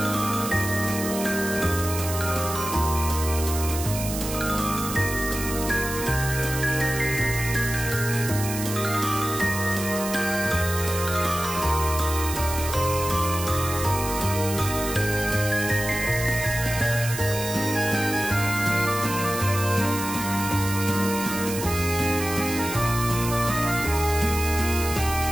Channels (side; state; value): right; noise; hiss, 7 dB below the sound